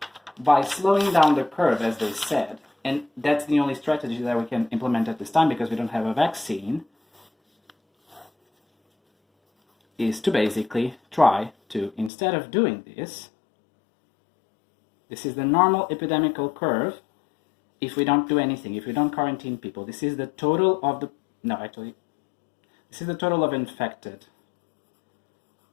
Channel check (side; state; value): right; drops out; at 12.1 s